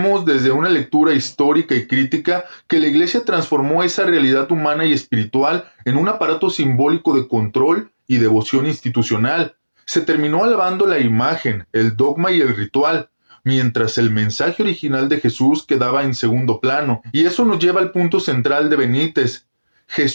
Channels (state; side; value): inverted; both; correlation -1.00